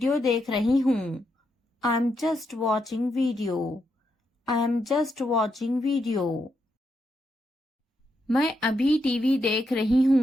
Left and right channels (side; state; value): both; normal; correlation 0.81